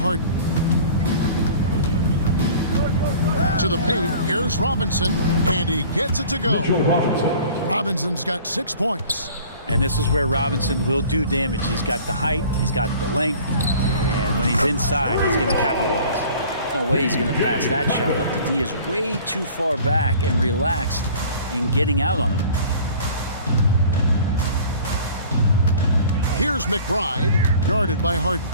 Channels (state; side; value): inverted; both; correlation -0.47